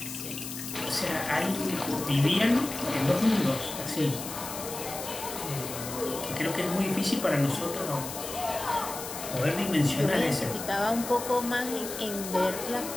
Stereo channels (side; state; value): left; noise; hiss, 8 dB below the sound